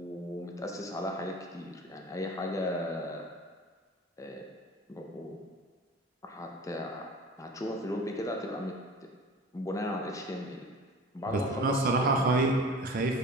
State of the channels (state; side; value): normal; both; correlation 0.40